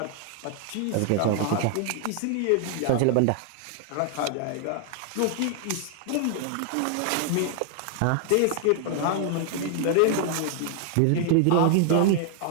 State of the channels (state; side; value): different; both; correlation 0.00